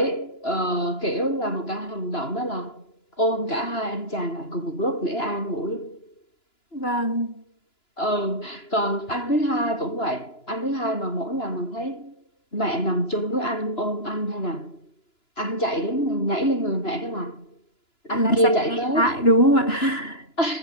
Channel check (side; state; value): right; late; 2.9 ms